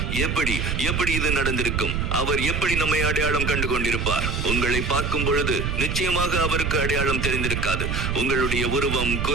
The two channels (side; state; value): right; noise; rumble, 1 dB below the sound